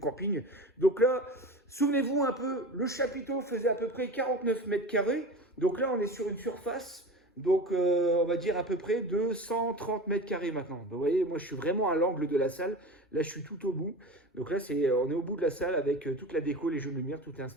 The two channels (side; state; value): both; normal; correlation 0.32